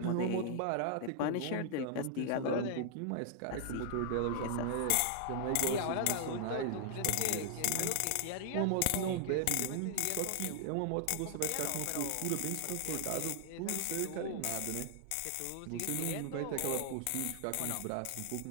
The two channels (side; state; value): both; different; correlation -0.01